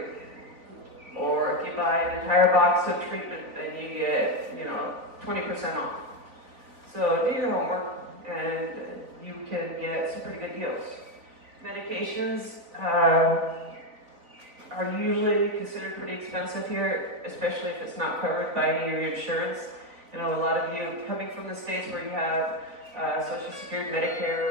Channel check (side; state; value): left; late; 4.0 ms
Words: Or if you buy an entire box of treatment, then you get, you know, 20% off. So do your homework, and you can get some pretty good deals. Medications are usually considered pretty expensive here, especially if it's not covered by any of your insurance. You know, a lot of you coming from the States where you have Social Security,